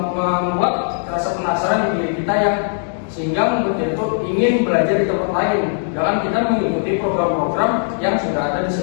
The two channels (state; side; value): silent; right; 66 dB below the other